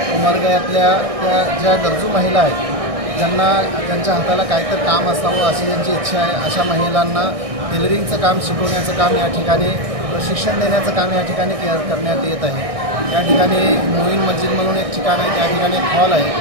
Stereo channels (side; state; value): left; late; 1.6 ms